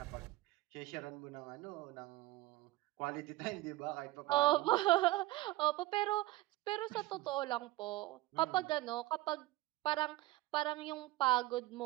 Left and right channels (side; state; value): left; quieter; 17.7 dB